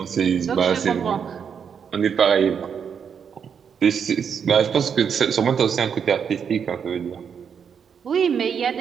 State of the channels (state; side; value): quieter; left; 7.1 dB